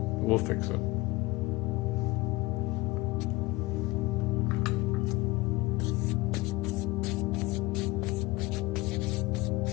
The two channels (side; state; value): right; quieter; 21.4 dB